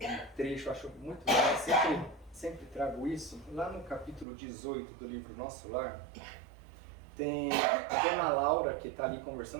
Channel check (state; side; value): drops out; left; at 4.2 s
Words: trecho, acho muito legal, sempre trago isso. Lá no capítulo 18 do livro Nosso Lar, tem a dona Laura que está ali